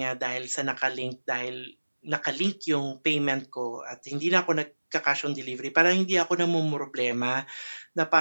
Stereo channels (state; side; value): inverted; both; correlation -1.00